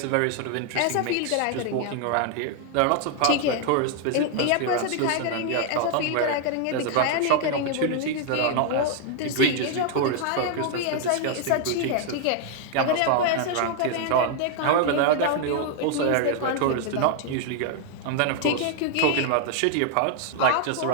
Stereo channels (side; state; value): both; different; correlation 0.00